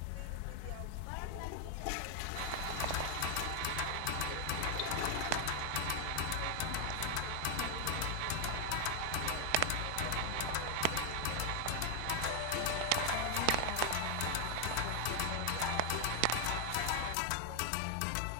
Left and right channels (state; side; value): different; both; correlation 0.01